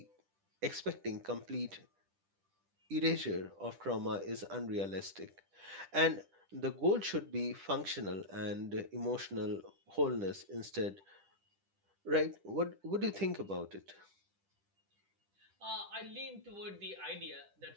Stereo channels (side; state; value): left; late; 10 ms